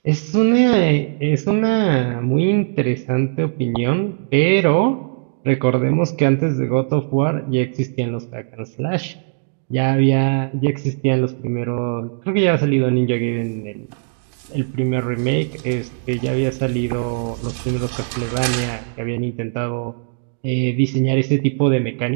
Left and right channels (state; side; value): silent; left; 66 dB below the other